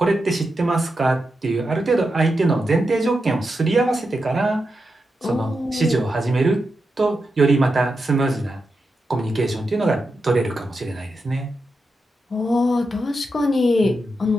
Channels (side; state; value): both; normal; correlation 0.87